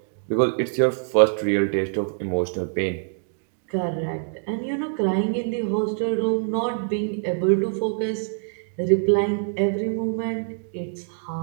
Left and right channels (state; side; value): silent; left; digital silence